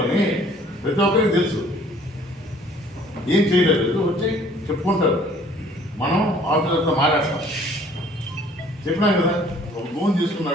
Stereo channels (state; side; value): normal; both; correlation 0.56